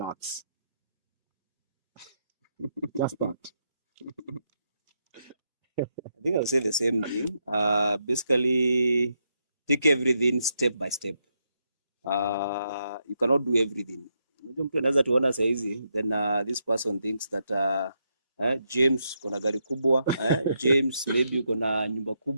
Just that. I think I'll say the same thing. Basically, take everything step by step. You cannot do everything. Mtu anaweza tuona saizi, then this person thinks that James kona gari kubwa, James maybe kona nyumba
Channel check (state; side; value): inverted; both; correlation -0.81